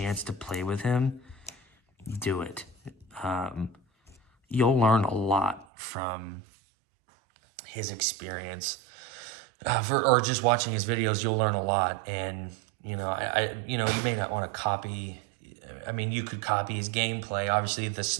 to play with him, do it. You'll learn a lot from his experience. Or just watching his videos, you'll learn a lot. And, you may not want to copy. I mean, you could copy his gameplay. Obviously, the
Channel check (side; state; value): left; drops out; at 5.7 s